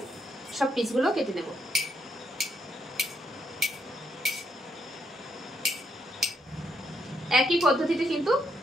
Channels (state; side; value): normal; both; correlation 0.76